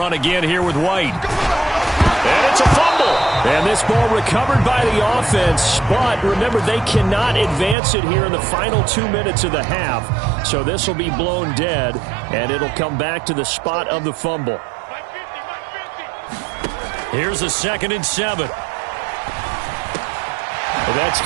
again here with White. And it's a fumble. And this ball recovered by the offense, but remember, they cannot advance it here in the final 2 minutes of the half. So this will be blown dead, and it'll come back to the spot of the fumble. Here's a 2nd and 7. Well, that's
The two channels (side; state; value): left; drops out; at 7.8 s